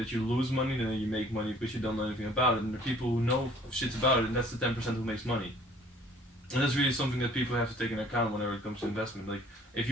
you lose money, then you make money because you don't know anything about it. And the people who know shit about it, and that's the 10% who makes money. And that's really something that people have to take into account whenever it comes to investment. Like, if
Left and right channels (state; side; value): normal; both; correlation 0.55